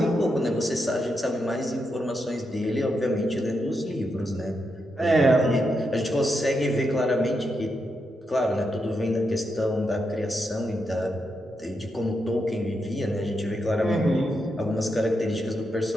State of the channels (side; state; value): both; normal; correlation 0.84